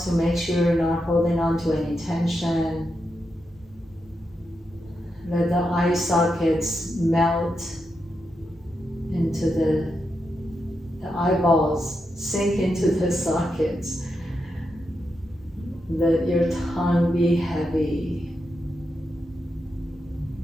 to make sure you're not holding on to any tension. Let the eye sockets melt into the eyeballs, sink into the sockets. Let your tongue be heavy.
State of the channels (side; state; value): both; normal; correlation 0.85